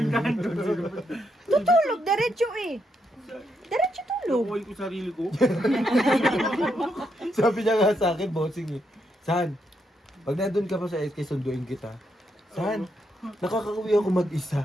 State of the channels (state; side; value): normal; both; correlation 0.79